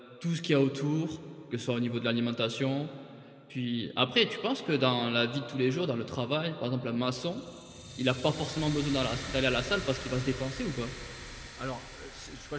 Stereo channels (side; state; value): both; identical; correlation 1.00